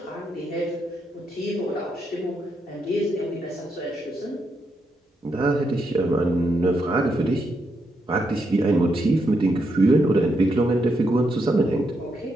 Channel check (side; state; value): both; normal; correlation 0.81